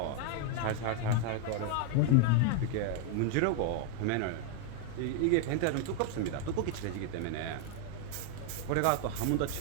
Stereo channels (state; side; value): different; both; correlation 0.00